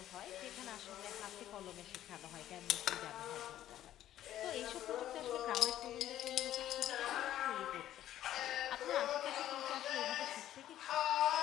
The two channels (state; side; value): quieter; right; 12.5 dB